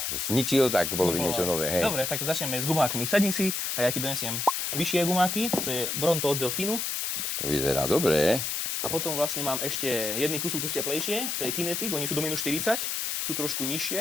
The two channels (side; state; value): left; noise; hiss, 1 dB below the sound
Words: zničil, tak bolo by niečo nové, hej. Dobre, tak začneme s gumákmi. Sadni si a ja ti donesiem vyššie gumáky, to je Bronto od Delfínu. To vyzerá dobre. A potom vlastne mám ešte jedný kus teplejšie, to je Kinetic, oni sú do minus 40, sú trošku